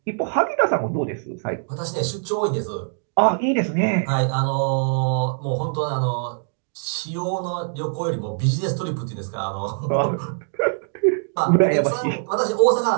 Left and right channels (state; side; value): silent; left; digital silence